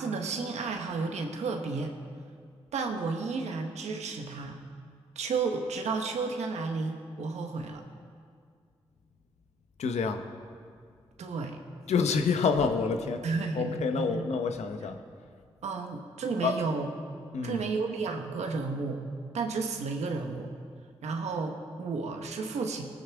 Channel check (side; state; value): both; normal; correlation 0.57